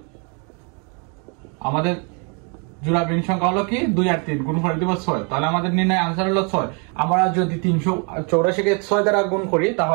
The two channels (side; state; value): left; quieter; 36.0 dB